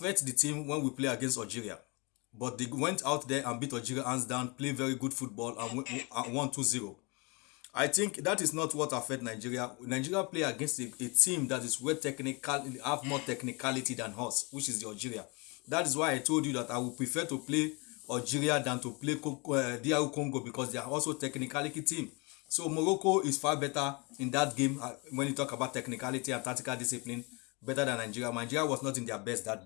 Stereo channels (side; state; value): right; quieter; 29.4 dB